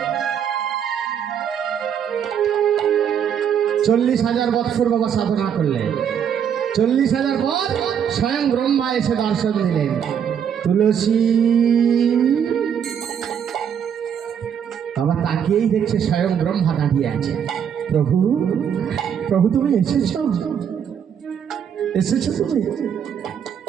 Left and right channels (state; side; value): quieter; left; 8.2 dB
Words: 40,000 বৎসর বাবা সাধনা করলেন। 40,000 পর স্বয়ং ব্রহ্মা এসে দর্শন দিলেন। তুলসী বাবা তাকিয়েই দেখছে স্বয়ং ব্রহ্মা দাঁড়িয়ে আছে। প্রভু, প্রভু তুমি এসেছো? এসেছো তুমি?